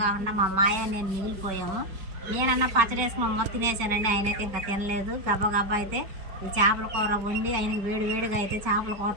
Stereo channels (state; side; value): late; left; 5.3 ms